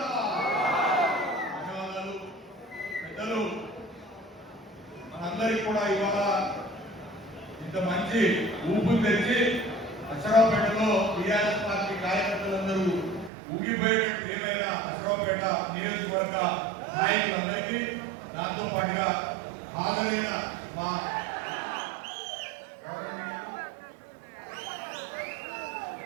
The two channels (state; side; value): drops out; left; at 13.3 s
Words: మనందరికీ కూడా ఇవాళ ఇంత మంచి ఊపు తెచ్చి అశ్వరావుపేటలో టీఆర్ఎస్ పార్టీ కార్యకర్తలందరూ ఊగిపోయేటట్టు ఏమైనా అశ్వరావుపేట నియోజకవర్గ నాయకులందరికీ దాంతో పాటుగా హాజరైన మా